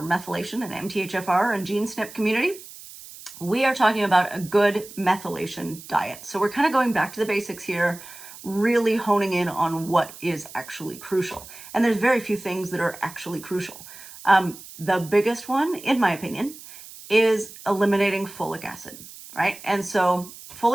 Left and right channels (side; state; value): right; noise; hiss, 16 dB below the sound